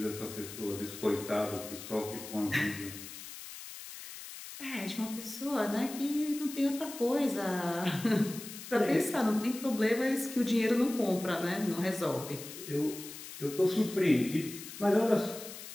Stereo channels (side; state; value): left; noise; hiss, 12 dB below the sound